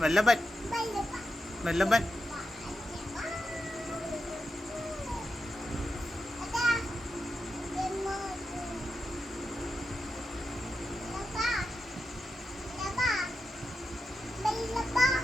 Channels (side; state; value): both; normal; correlation 0.89